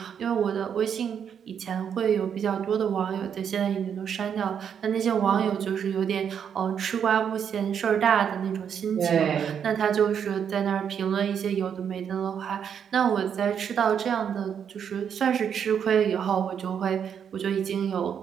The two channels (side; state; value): left; quieter; 7.9 dB